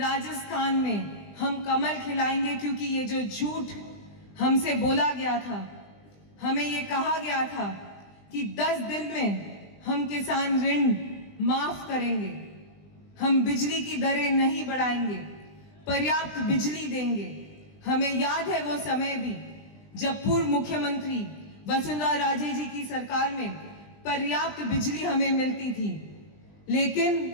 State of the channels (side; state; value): right; late; 20 ms